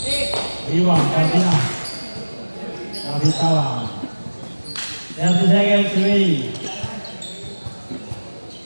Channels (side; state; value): both; inverted; correlation -1.00